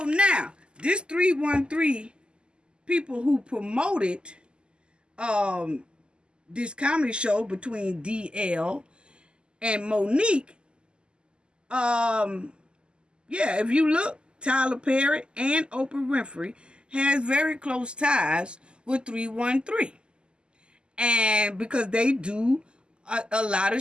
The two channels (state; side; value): late; left; 0.049 ms